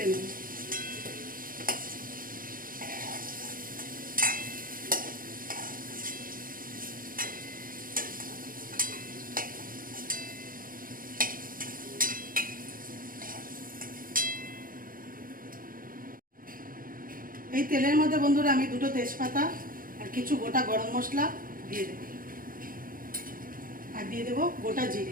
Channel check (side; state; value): left; late; 0.41 ms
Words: নেব। এই তেলের মধ্যে বন্ধুরা আমি 2টো তেজপাতা আর কিছু গোটা গরম মশলা দিয়ে দেব, আর দিয়ে দেব গোটা